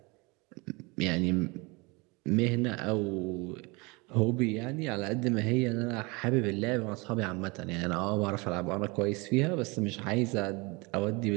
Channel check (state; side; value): quieter; left; 26.9 dB